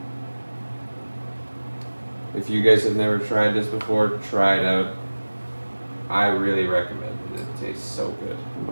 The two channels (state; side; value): inverted; both; correlation -1.00